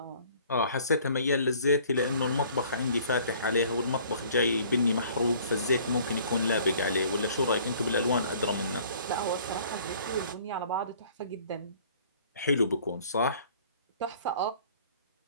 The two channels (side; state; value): both; inverted; correlation -0.54